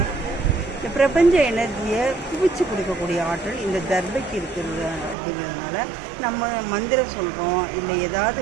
இந்த பிரபஞ்ச எனர்ஜியை குவிச்சு கொடுக்கக்கூடிய ஆற்றல் இந்த தர்பைக்கு இருக்கிறது. அப்படிங்கிறதுனால நம்ம மந்திரம் சொல்கிறோம், இல்லை ஏதாவது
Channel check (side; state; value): left; drops out; at 5.2 s